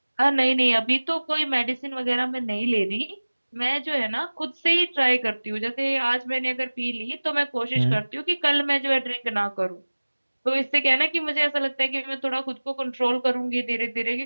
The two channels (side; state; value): both; inverted; correlation -1.00